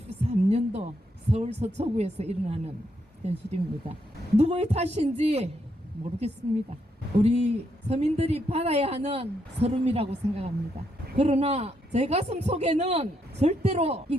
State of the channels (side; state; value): both; normal; correlation 0.78